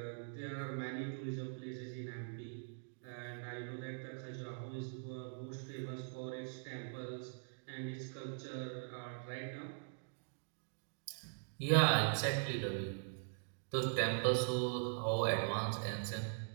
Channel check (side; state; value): left; silent; digital silence